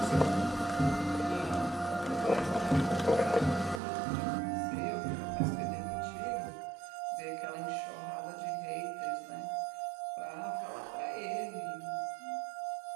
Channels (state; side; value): drops out; left; at 3.8 s